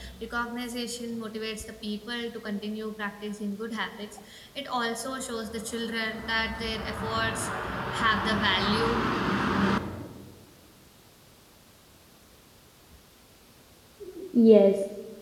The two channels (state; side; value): identical; both; correlation 1.00